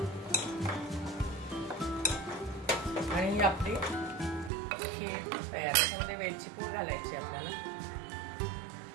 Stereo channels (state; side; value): drops out; left; at 4.5 s